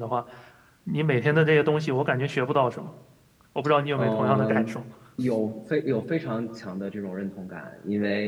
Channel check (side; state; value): both; identical; correlation 1.00